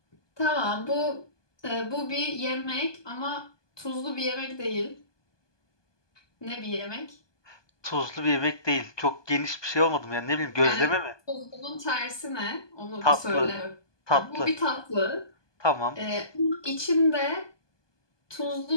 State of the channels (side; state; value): right; late; 1.2 ms